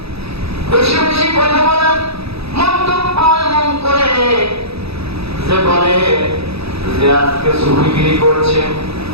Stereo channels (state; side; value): late; left; 0.78 ms